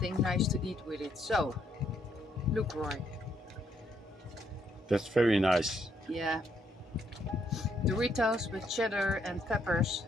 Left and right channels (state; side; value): normal; both; correlation 0.73